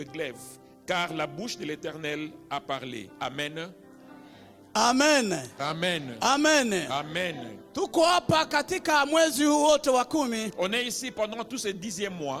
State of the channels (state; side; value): identical; both; correlation 1.00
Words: glaive, car la bouche de l'Éternel a parlé. Amen. Amen. Amen. Amen. Amen. Tuko hapa katika mwezi huu wote wa 10. On est ici pendant tout ce 10e